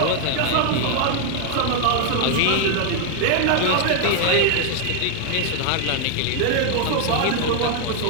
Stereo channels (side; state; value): both; different; correlation 0.00